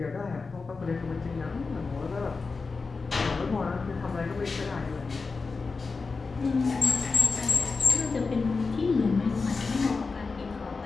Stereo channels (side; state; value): right; quieter; 4.3 dB